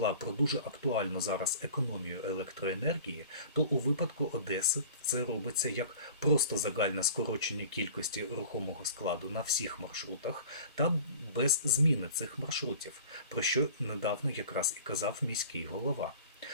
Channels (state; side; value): inverted; both; correlation -0.42